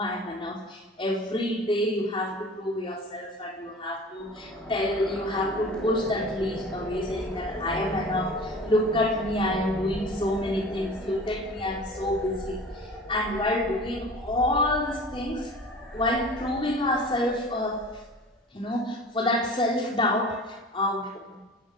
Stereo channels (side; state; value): both; normal; correlation 0.41